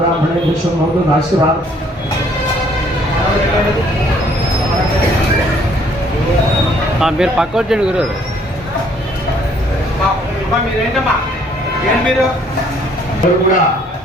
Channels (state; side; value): normal; both; correlation 0.62